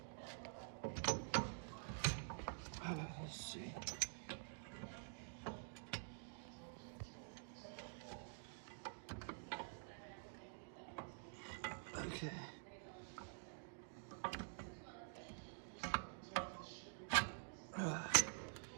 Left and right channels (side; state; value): left; silent; digital silence